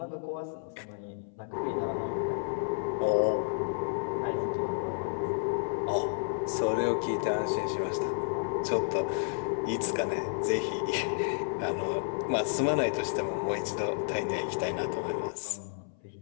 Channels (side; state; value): right; silent; 57 dB below the other